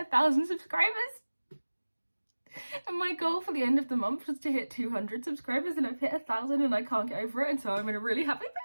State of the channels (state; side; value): inverted; both; correlation -1.00